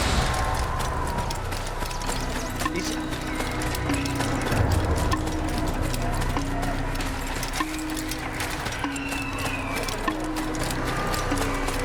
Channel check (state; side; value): identical; both; correlation 1.00